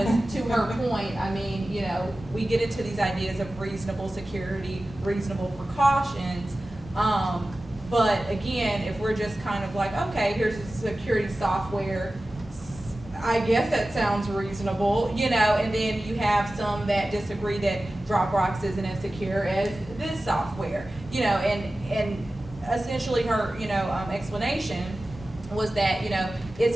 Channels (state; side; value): normal; both; correlation 0.95